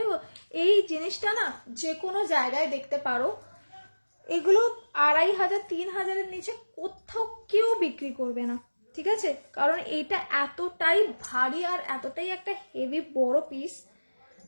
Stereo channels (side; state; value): both; inverted; correlation -1.00